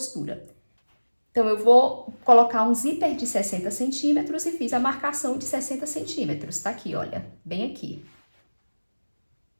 Então, eu vou colocar um zíper de 60 centímetros e fiz a marcação de 60 centímetros. Tá aqui, olha, bem aqui.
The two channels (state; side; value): inverted; both; correlation -1.00